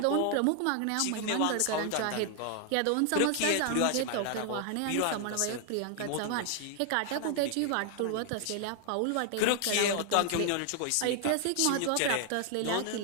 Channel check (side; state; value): both; different; correlation 0.00